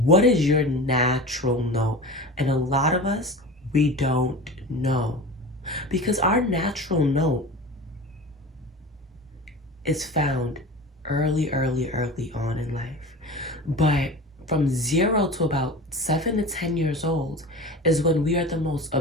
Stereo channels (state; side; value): normal; both; correlation 0.33